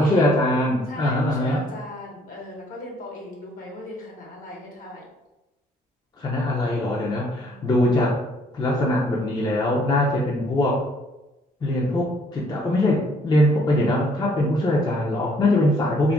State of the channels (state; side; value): normal; both; correlation 0.64